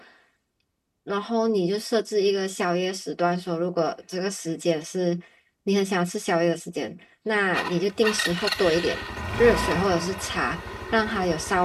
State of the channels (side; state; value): both; identical; correlation 1.00